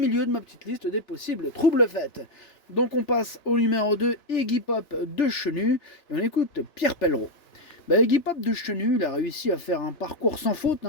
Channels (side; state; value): right; late; 2.9 ms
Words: de ma petite liste des possibles troubles faits. Donc on passe au numéro 2, Iggy Pop de Chenu et on écoute Pierre Pellereau. Iggy Pop de Chenu, il a réussi à faire un parcours sans faute